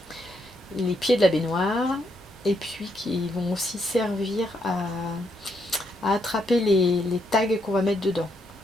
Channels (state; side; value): normal; both; correlation 0.76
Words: pieds de la baignoire. Et puis qui vont aussi servir à attraper les tags qu'on va mettre dedans.